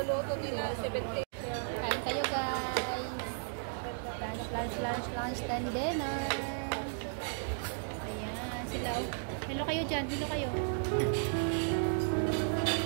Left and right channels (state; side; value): silent; left; digital silence